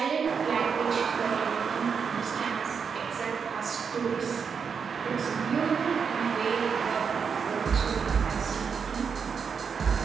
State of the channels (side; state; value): left; quieter; 6.3 dB